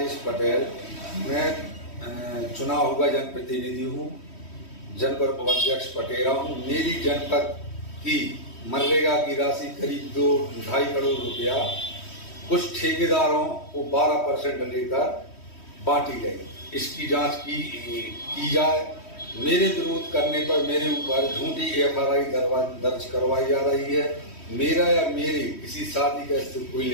पटेल, मैं चुनाव हुआ जनप्रतिनिधि हूँ, जनपद उपाध्यक्ष पटेरा हूँ। मेरी जनपद की मनरेगा की राशि करीब 2-2.5 करोड़ रुपया कुछ ठेकेदारों को 12% लेकर बांटी गई। इसकी जांच की जाए। मेरे विरोध करने पर मेरे ऊपर झूठी FRI दर्ज करवाई जा रही है। मेरा या मेरे किसी शादी का इससे कोई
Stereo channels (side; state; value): right; late; 3.1 ms